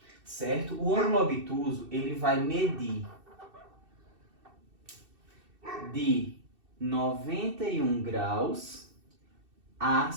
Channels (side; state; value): left; late; 2.6 ms